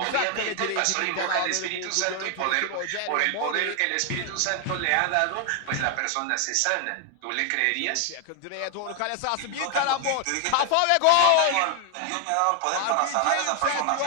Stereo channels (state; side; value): different; both; correlation 0.00